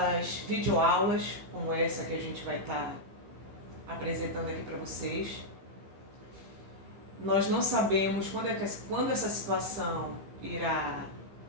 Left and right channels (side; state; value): left; late; 15 ms